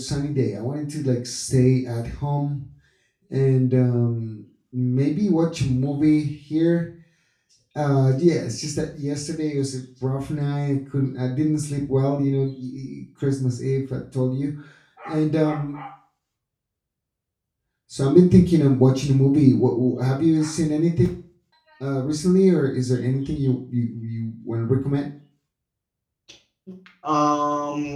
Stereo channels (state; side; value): identical; both; correlation 1.00